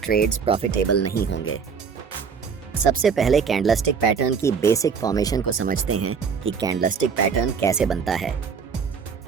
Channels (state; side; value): quieter; left; 6.1 dB